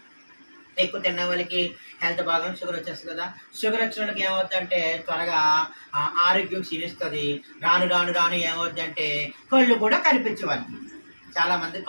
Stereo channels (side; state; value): both; inverted; correlation -1.00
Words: ఎక్కువ తిన్న వాళ్ళకి హెల్త్ బాగా షుగర్ వచ్చేస్తుంది కదా. షుగర్ వచ్చిన వాళ్ళకి ఏమవుతుందంటే త్వరగా ఆరోగ్యం క్షీణిస్తుంది. రాను రాను రాను ఏమవుతుందంటే కళ్ళు కూడా కనిపించే వాళ్ళకి, చాలామంది